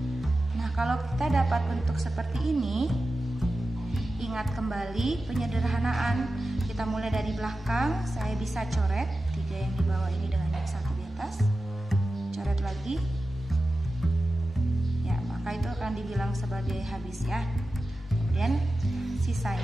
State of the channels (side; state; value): both; normal; correlation 0.93